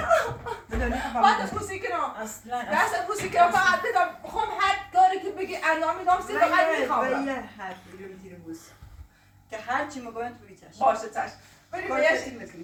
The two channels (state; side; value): identical; both; correlation 1.00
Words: پات بوسی کنم اصلا دست بوسی کنم فقط بدم بخوام هر کاری که بگی انجام میدم سی فقط میخوام ولی حرف بگیرم تیر بوس که هر چی مگوین تو بیچش باشه چشم بریم کار بهش کسی